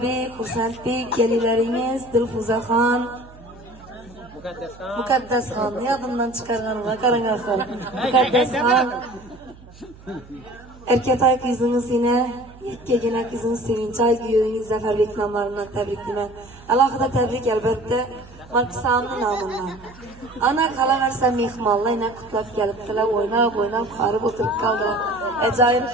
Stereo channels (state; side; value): noise; right; hum, 21 dB below the sound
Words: Xursandbek, kelinlaringiz Dilfuzaxon, Muqaddasxon, yodimdan chiqarganlar, qarang axir. Muqaddasxon, erkatoy qizingiz yine yakkagina qizingiz Sevinchoy, kuyoviniz Zafarbek nomlaridan tabriklayman. Alohida tabrik albatta Maksamni nomidan. Ana qolaversa mehmonlar yana qutlab kelibdilar, o'ynab qarib o'tirib qoldilar. Ajoyib